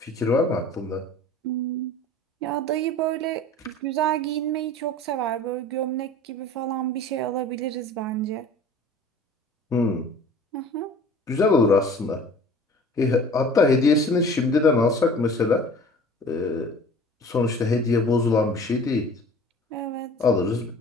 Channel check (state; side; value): normal; both; correlation 0.45